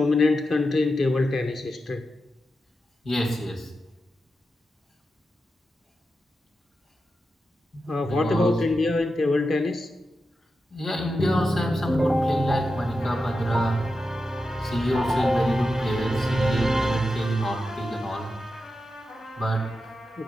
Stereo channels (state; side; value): normal; both; correlation 0.89